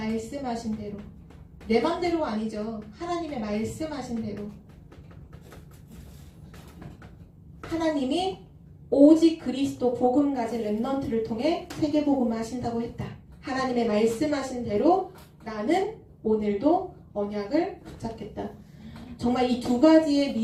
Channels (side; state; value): both; identical; correlation 1.00